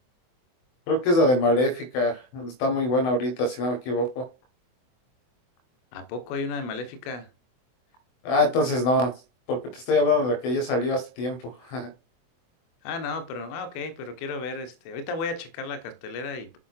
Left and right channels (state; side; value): late; right; 24 ms